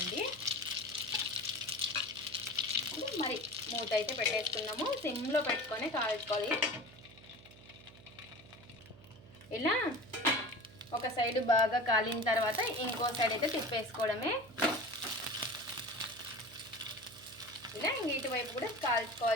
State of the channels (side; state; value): right; noise; hum, 21 dB below the sound